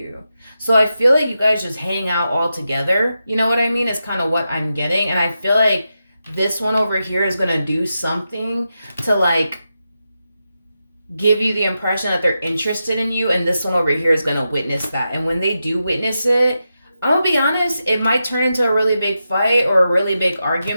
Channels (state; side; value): inverted; both; correlation -0.88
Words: So I feel like you guys just hang out all together. You know what I mean? It's kind of what I'm getting. And I feel like this one over here is going to do something to, like, give you the impression that they're interested in you. And this one over here is going to witness that. And when they do witness it, I'm going to be honest, it might turn into a really big fight or a really big